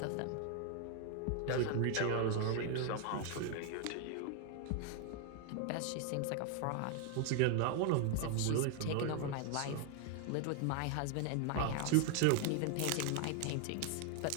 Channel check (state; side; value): different; both; correlation 0.00